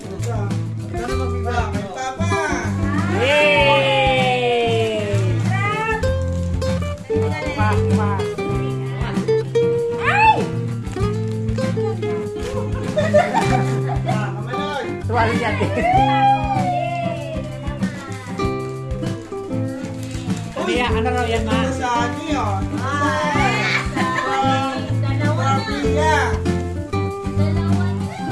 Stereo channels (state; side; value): identical; both; correlation 1.00